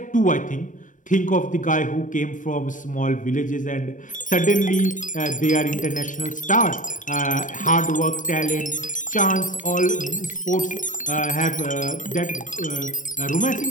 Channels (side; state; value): right; late; 0.37 ms